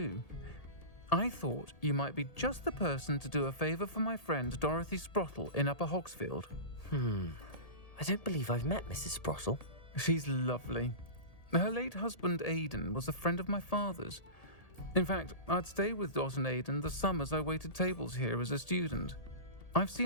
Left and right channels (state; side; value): late; right; 1.8 ms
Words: I thought you might be just the person to do a favour for my friend Dorothy Sprottle in Upper Hogsfield. I don't believe I've met Mrs. Sprottle. She's lovely. Her late husband Aidan was a friend of my father's. In fact, I'd stay with Dot and Aidan the summers I waited tables here as a student. I've